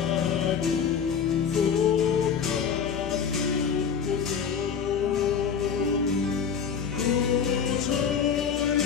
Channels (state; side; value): quieter; right; 7.0 dB